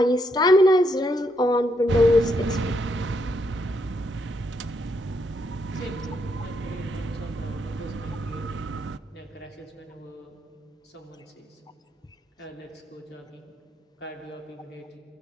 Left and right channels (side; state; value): both; normal; correlation 0.77